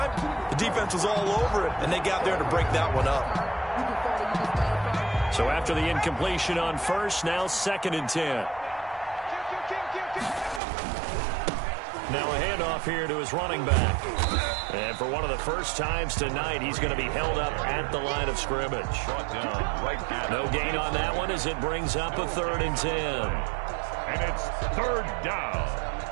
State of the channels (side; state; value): left; drops out; at 10.6 s